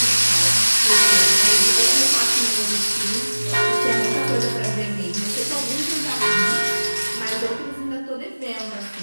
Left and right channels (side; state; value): both; inverted; correlation -1.00